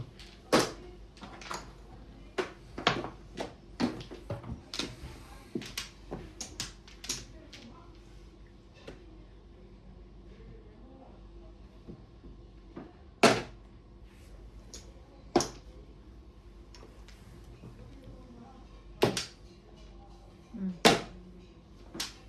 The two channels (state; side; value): identical; both; correlation 1.00